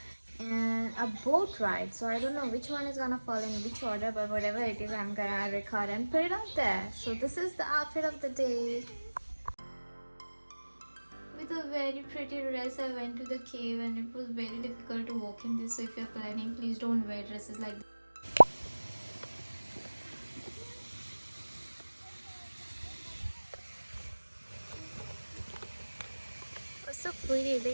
and a boat ride. So I don't know which one is gonna fall in which order, but whatever it is, I'm gonna record and put it out there. So this is the outfit of the day. With a very pretty dress, I went to the cave and it was very difficult to walk in this. So if you're planning, please don't wear dresses like this. It was so pretty. They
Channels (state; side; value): inverted; both; correlation -1.00